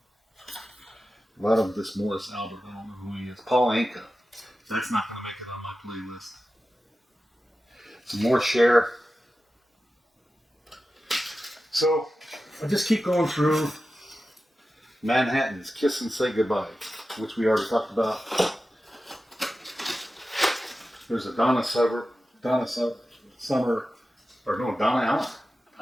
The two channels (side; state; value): both; normal; correlation 0.93